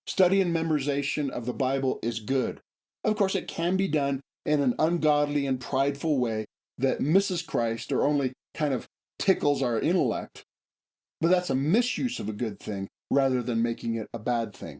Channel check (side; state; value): both; identical; correlation 1.00